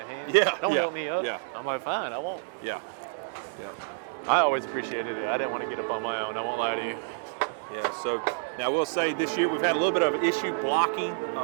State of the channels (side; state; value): left; silent; digital silence